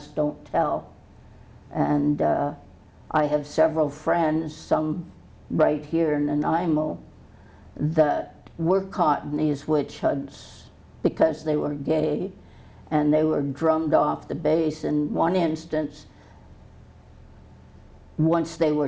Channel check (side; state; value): both; identical; correlation 1.00